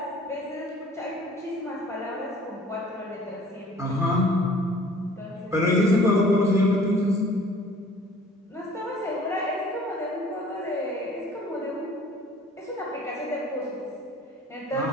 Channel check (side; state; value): both; normal; correlation 0.51